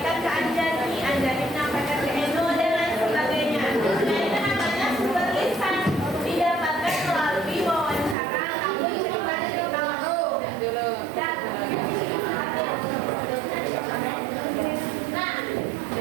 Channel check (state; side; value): drops out; left; at 8.2 s